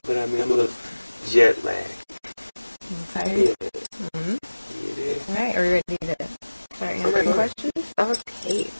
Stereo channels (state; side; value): inverted; both; correlation -1.00